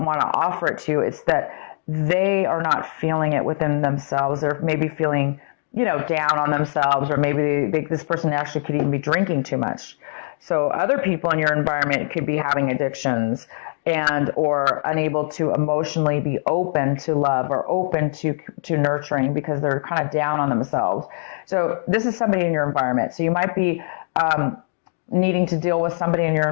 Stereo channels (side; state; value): right; silent; digital silence